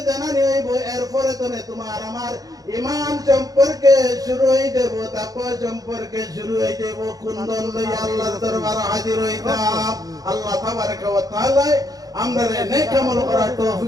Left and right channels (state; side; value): late; left; 0.18 ms